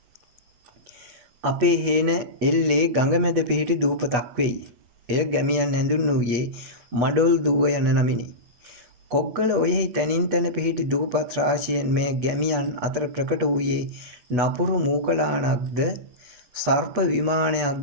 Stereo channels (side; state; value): left; late; 8.2 ms